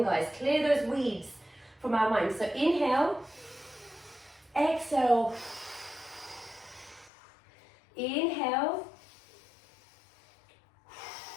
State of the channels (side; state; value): right; drops out; at 7.1 s